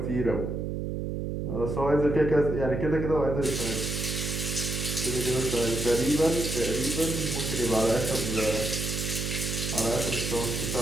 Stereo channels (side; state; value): right; noise; hum, 3 dB below the sound